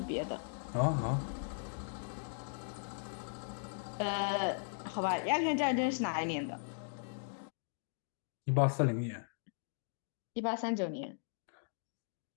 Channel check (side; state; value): right; silent; digital silence